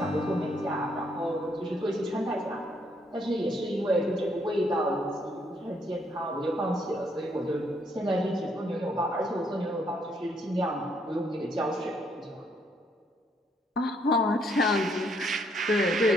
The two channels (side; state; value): both; normal; correlation 0.71